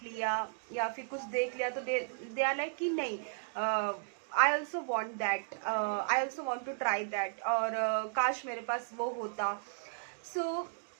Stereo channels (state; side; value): silent; left; digital silence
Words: लिया या फिर कुछ देख लिया तो दे आर लाइक कि नहीं, I also want that, I also want to try that, और काश मेरे पास वो होता.